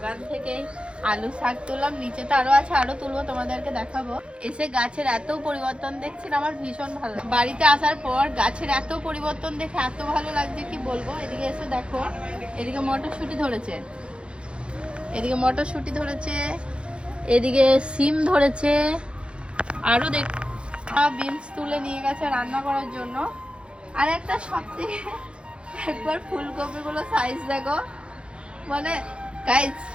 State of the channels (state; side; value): late; left; 0.057 ms